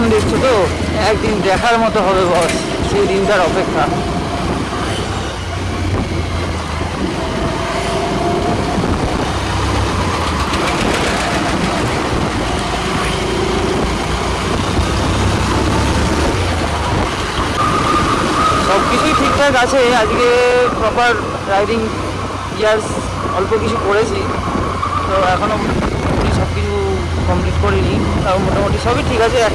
দেখছো তো, একদিন দেখার মতো হবে বস, সেই দিনটার অপেক্ষা। সব কিছুই ঠিকঠাক আছে, আজকে প্রপার রাইডিং গিয়ার্স অল্প কিছু করেছি, তো এখনও সব কিছু কমপ্লিট করিনি, তাও মোটামুটি সবই ঠিক আছে।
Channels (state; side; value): identical; both; correlation 1.00